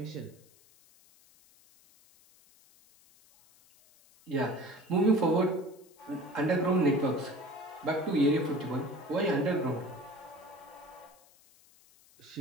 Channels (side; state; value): left; noise; hiss, 28 dB below the sound